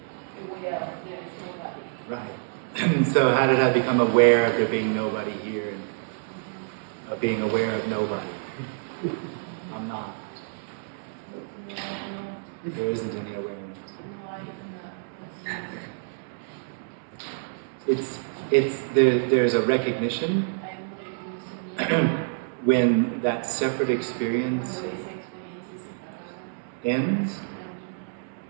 aware of there is nobody? Right. So how did I become aware of there being nobody here and of being aware of nobody? I'm not. There isn't any awareness. There's a recognition when that separate experience ends,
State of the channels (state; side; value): silent; left; 60 dB below the other